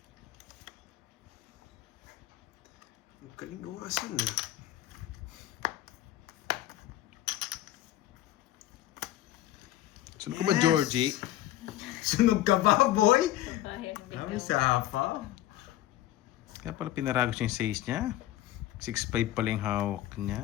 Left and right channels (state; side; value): quieter; right; 14.0 dB